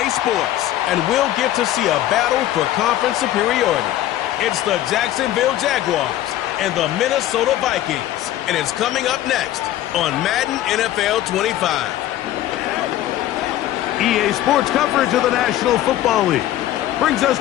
Sports, and we'll get to see a battle for conference superiority. It's the Jacksonville Jaguars and the Minnesota Vikings, and it's coming up next on Madden NFL 25. EA Sports coverage of the National Football League brings us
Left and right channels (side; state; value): right; quieter; 13.5 dB